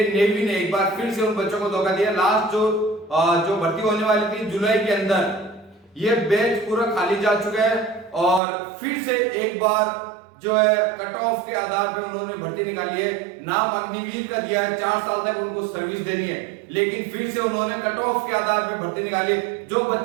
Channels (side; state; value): left; drops out; at 8.4 s